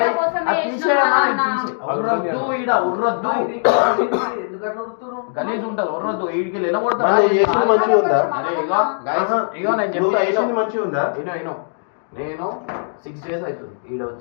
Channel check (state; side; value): silent; right; digital silence